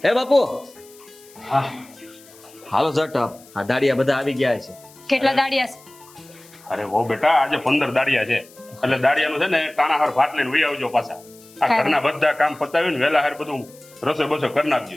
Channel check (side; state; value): left; noise; hiss, 24 dB below the sound